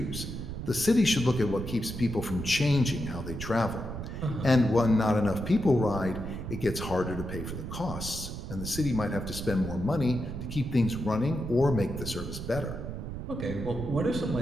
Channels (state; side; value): noise; right; rumble, 7 dB below the sound